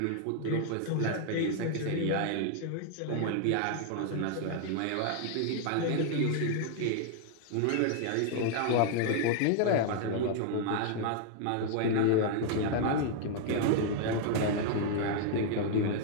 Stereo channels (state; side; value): different; both; correlation 0.00